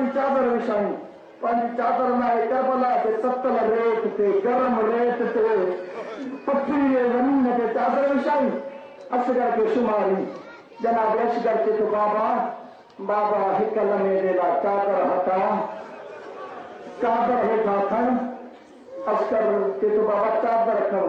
चादर विछाई पंहिंजी चादर लाइ करबला ते ततल रेत ते गरम रेत ते पथरी ज़मीन ते चादर विछाई असगर के शुमारी जनाब असगर के तो बाबा बाबा हिक लम्हे जे लाइ चादर हटा चादर हेठा खण असगर के तो बाबा चादर खण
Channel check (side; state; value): both; identical; correlation 1.00